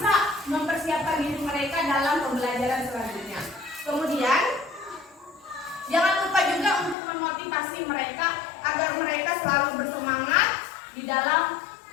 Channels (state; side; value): drops out; right; at 7.0 s